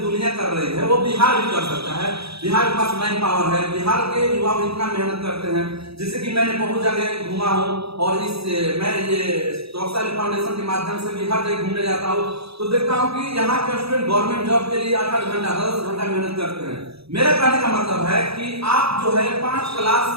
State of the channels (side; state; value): left; late; 0.77 ms